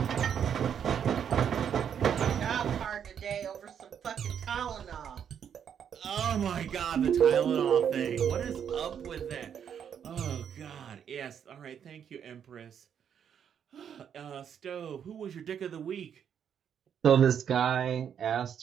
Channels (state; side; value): quieter; left; 8.3 dB